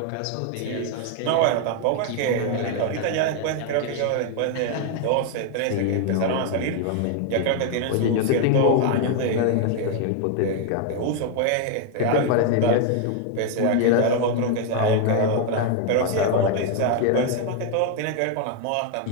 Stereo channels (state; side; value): different; both; correlation 0.01